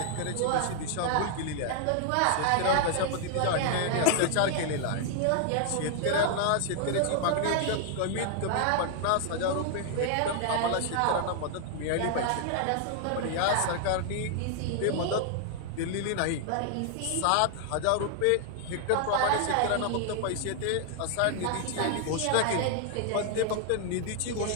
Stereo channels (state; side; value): different; both; correlation 0.00